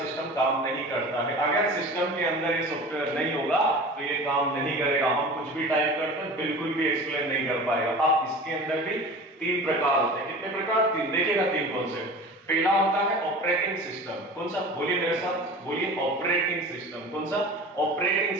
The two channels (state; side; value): normal; both; correlation 0.37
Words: सिस्टम काम नहीं करता है। अगर सिस्टम के अंदर ये सॉफ्टवेयर नहीं होगा तो ये काम नहीं करेगा। हम कुछ भी टाइप करते हैं बिल्कुल भी एक्सप्लेन नहीं कर पाएगा। अब इसके अंदर भी 3 प्रकार होते हैं। कितने प्रकार? 3। देखिएगा 3 कौन से। पहला होता है ऑपरेटिंग सिस्टम। कौन सा? बोलिए मेरे साथ, बोलिए ऑपरेटिंग सिस्टम। कौन सा? Operating